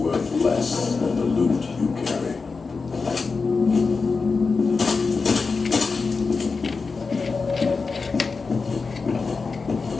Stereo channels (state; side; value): quieter; right; 4.5 dB